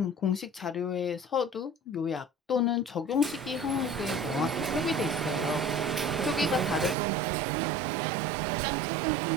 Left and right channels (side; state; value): left; drops out; at 7.0 s